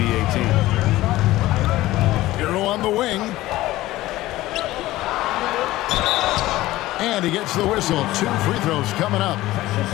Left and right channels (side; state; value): right; quieter; 16.8 dB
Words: team. Hero on the wing. And he gets the whistle. 2 free throws coming up.